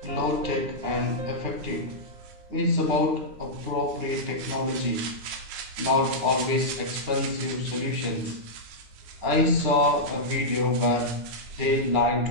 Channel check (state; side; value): late; left; 9.7 ms